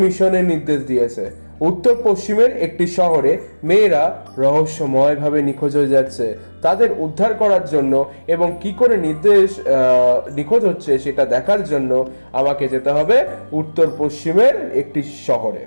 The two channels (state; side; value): inverted; both; correlation -1.00